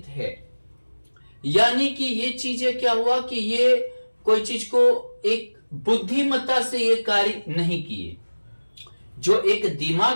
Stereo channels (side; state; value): both; inverted; correlation -1.00